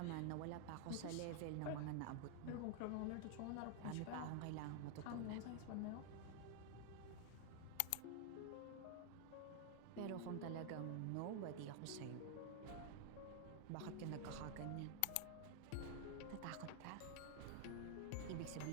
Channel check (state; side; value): different; both; correlation 0.00